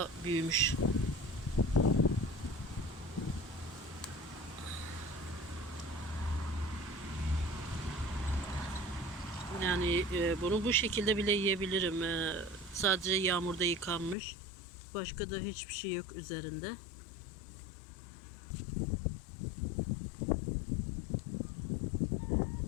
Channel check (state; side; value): drops out; right; at 14.2 s